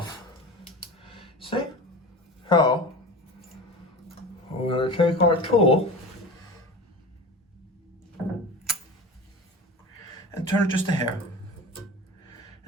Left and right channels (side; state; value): both; normal; correlation 0.33